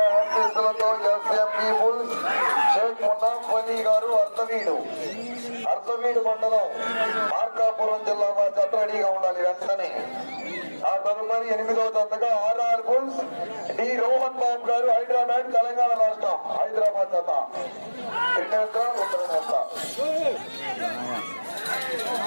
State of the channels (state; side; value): inverted; both; correlation -1.00